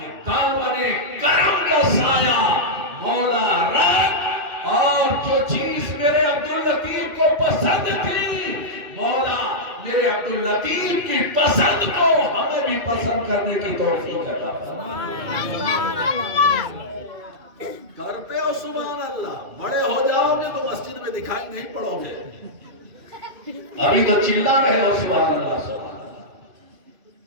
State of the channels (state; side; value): late; left; 2.5 ms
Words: دامن کرم کا سایہ مولا رکھ، اور جو چیز میرے عبداللطیف کو پسند تھی، مولا میرے عبداللطیف کی پسند کو ہمیں بھی پسند کرنے کی توفیق عطا فرما۔ کرتے ہو سبحان اللہ، بڑے ہو جاؤ گے تو مسجد میں دکھائی نہیں پڑو گے، ابھی تو چلا رہے ہو سبحان اللہ سبحان اللہ۔